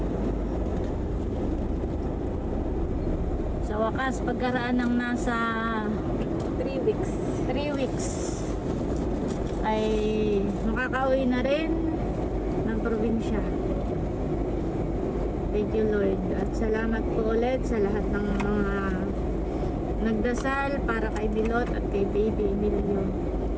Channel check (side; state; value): both; identical; correlation 1.00